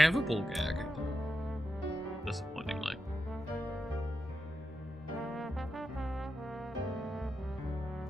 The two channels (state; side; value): normal; both; correlation 0.88